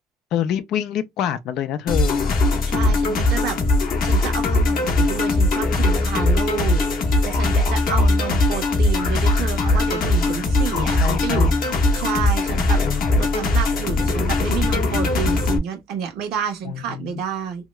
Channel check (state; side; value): normal; both; correlation 0.65